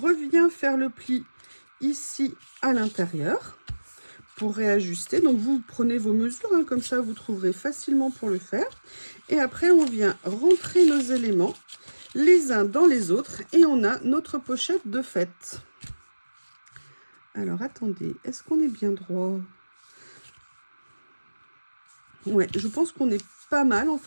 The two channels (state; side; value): inverted; both; correlation -1.00